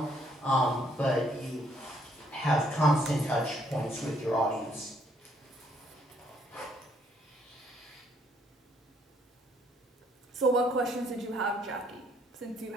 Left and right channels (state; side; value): normal; both; correlation 0.68